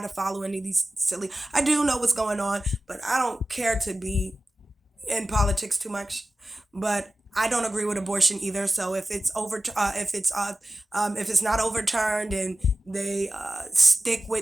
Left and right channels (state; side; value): normal; both; correlation 0.95